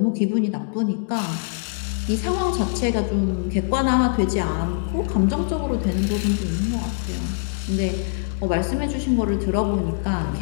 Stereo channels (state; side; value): silent; right; digital silence